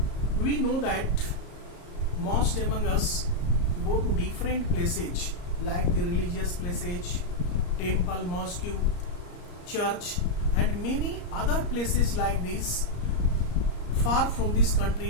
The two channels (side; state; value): right; late; 34 ms